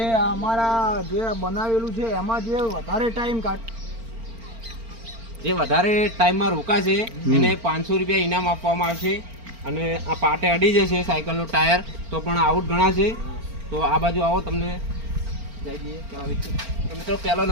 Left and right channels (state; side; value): late; left; 4.4 ms